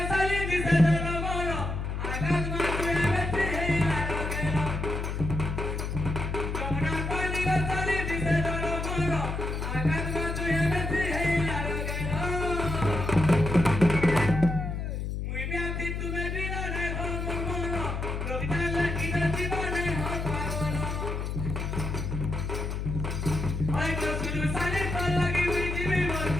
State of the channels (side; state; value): left; noise; hum, 3 dB below the sound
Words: সালি দিছে ঝলমল আগাল মা তুই বেশি হেইলার গেল যমুনার পানির সালি দিছে ঝলমল আগাল মা তুই বেশি হেইলার গেল মুই ব্যাধি তুমি বিনা নাই ভমল কবিতা লাগি জীবনে হল পাগল ওই তো শুধু সালে তো লাগি মুই জীবি মোর